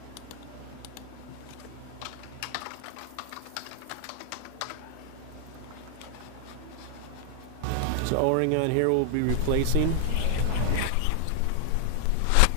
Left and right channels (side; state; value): both; different; correlation 0.00